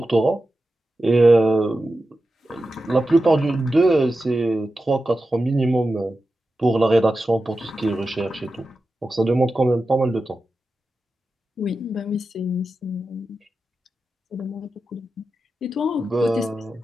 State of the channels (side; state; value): both; normal; correlation 0.92